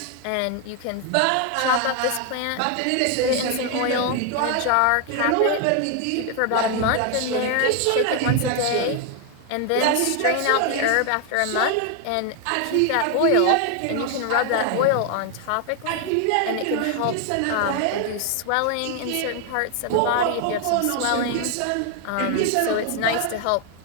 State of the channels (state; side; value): different; both; correlation 0.01